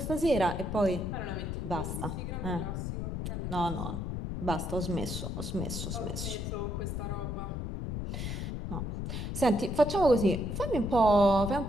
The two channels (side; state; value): left; noise; rumble, 3 dB below the sound